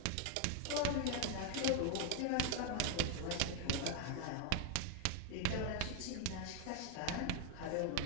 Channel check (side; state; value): both; different; correlation 0.01